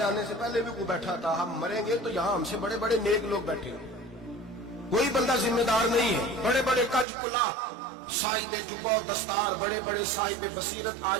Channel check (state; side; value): drops out; left; at 7.1 s